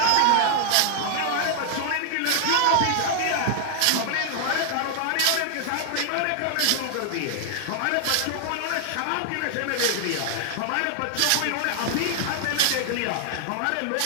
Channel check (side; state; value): both; different; correlation 0.00